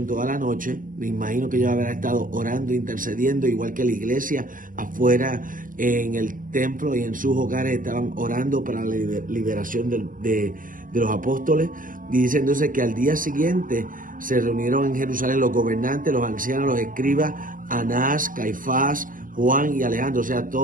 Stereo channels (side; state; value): left; late; 0.39 ms